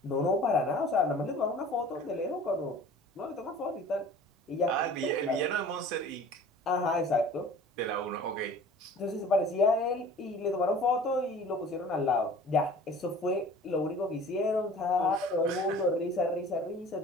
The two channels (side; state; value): both; normal; correlation 0.45